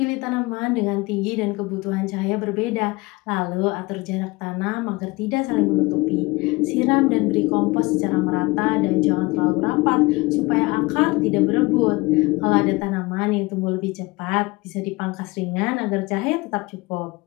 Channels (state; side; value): quieter; right; 23.3 dB